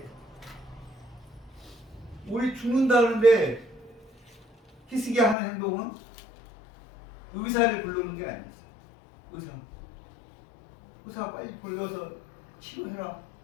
우리 죽는다는데 히스기야 하는 행동은 의사를 부르는 게 아니었어요. 의사 빨리 불러서 치료해라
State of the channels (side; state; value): right; drops out; at 5.4 s